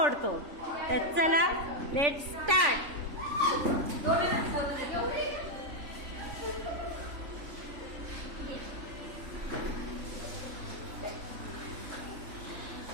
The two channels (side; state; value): left; late; 3.5 ms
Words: तर चला लेट स्टार्ट.